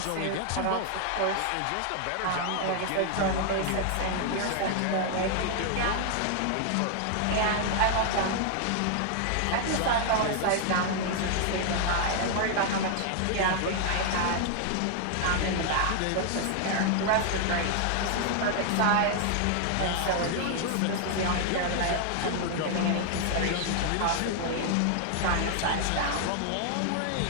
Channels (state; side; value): different; both; correlation 0.00